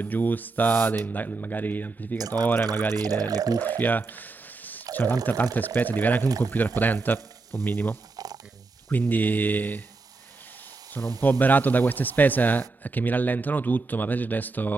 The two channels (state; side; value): quieter; left; 3.8 dB